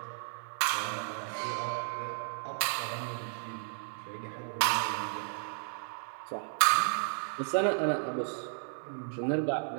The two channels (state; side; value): silent; left; digital silence